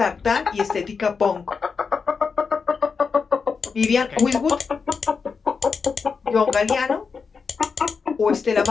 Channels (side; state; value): right; quieter; 5.3 dB